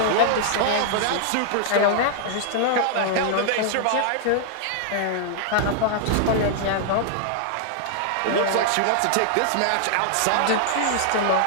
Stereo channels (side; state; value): both; different; correlation -0.01